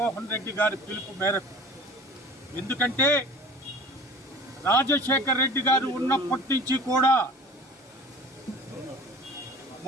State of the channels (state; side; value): normal; both; correlation 0.42